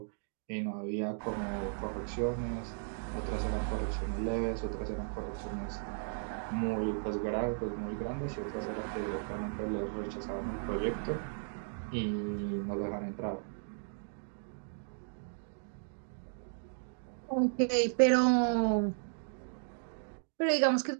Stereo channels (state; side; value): silent; left; digital silence